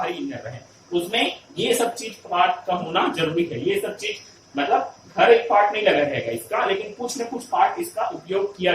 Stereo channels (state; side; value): identical; both; correlation 1.00